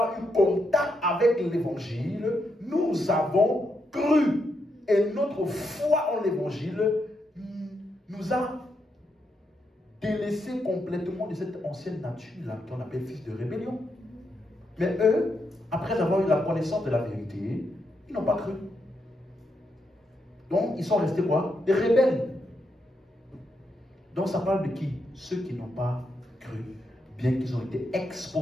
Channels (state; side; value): normal; both; correlation 0.81